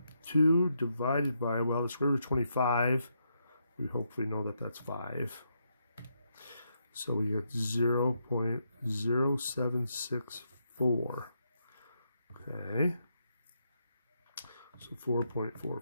divided by, well, the square root of 25, we hopefully know that that's 5. So we get 0.0764. Okay. So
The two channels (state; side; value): inverted; both; correlation -0.80